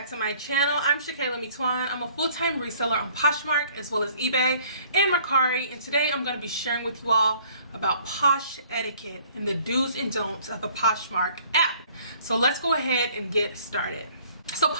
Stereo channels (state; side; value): inverted; both; correlation -0.56